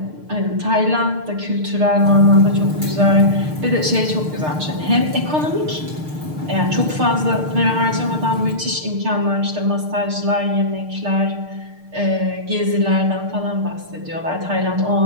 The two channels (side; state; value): left; late; 6.6 ms